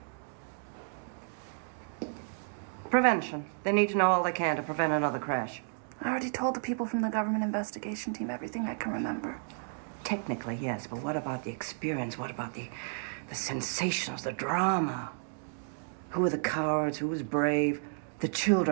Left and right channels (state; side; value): silent; left; digital silence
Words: Prevention. They need to know all they can to prevent another crash. I already told the people from the government investigation team everything I can remember. Technically, yes, but what about the experience? What about the sensations, the drama? Who were the cowards? Who was brave? The